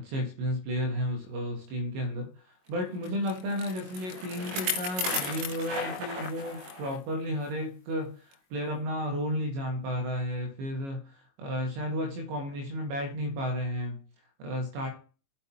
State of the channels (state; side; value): late; left; 22 ms